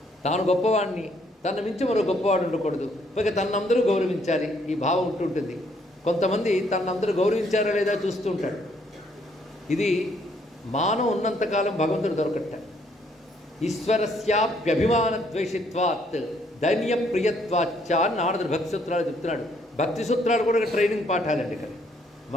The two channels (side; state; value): both; normal; correlation 0.68